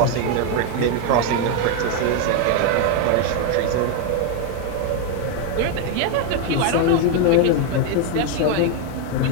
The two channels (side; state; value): both; different; correlation 0.01